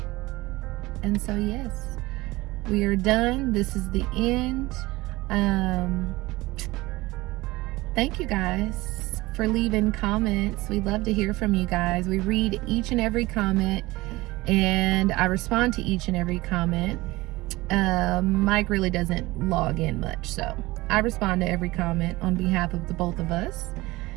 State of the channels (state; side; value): quieter; left; 20.3 dB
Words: And so yes, we are done. This is the end. Thank you guys for leaving comments. We love to hear from you guys. We read each and every comment, and I respond to each and every comment. Mike really doesn't log in much, so I respond to every comment on behalf of the both of us.